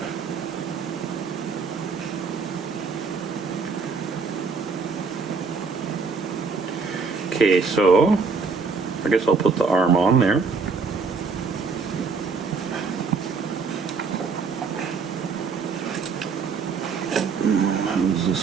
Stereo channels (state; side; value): quieter; left; 4.9 dB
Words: Okay, so I guess I'll put the arm on there. How's this